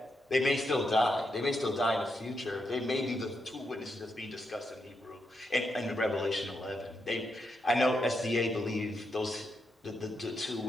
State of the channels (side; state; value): both; normal; correlation 0.82